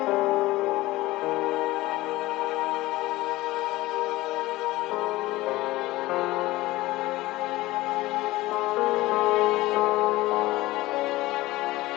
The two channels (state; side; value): quieter; right; 18.5 dB